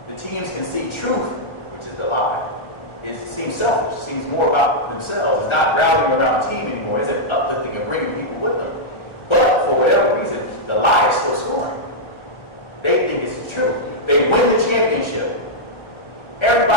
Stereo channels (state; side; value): late; right; 1.4 ms